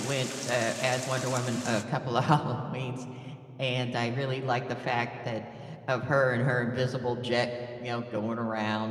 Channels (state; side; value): identical; both; correlation 1.00